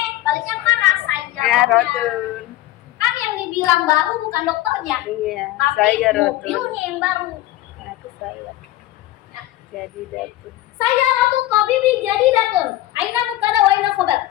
baliknya mana saya. Ya rotun. Kan yang dibilang baru bukan dokternya, Iya. tapi Saya rotun. mobilnya yang baru. Nah, itu saya. Ya. Jadi datun. Saya ratu tobibi jadi datun. Aina mubtada wa aina khobar.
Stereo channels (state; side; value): quieter; right; 15.5 dB